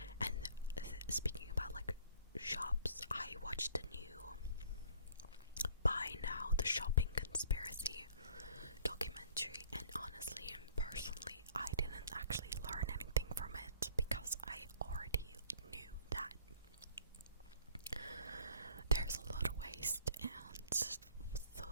And speaking about like shops, I watched the new Buy Now, the Shopping Conspiracy documentary, and honestly and personally, I didn't actually learn anything from it because I already knew that there's a lot of waste, and the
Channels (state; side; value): inverted; both; correlation -0.55